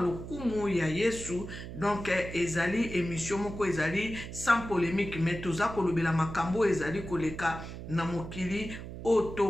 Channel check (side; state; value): right; noise; hum, 10 dB below the sound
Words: ya Yesu. Donc ezali émission moko ezali sans polémique mais toza kolobela makambo ezali koleka na mokili